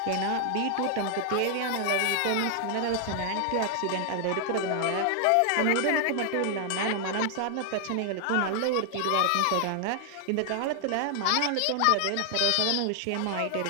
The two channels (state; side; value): different; both; correlation 0.00